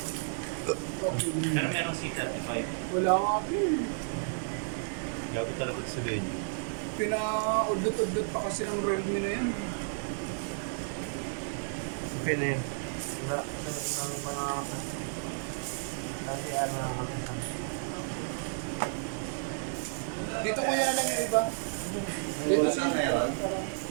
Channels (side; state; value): left; silent; 56 dB below the other